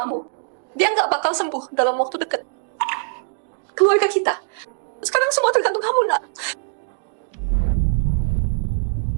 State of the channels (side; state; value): left; silent; digital silence